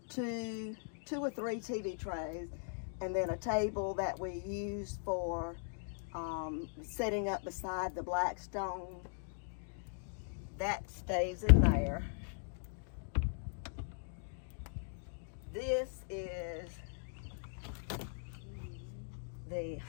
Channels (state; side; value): silent; right; digital silence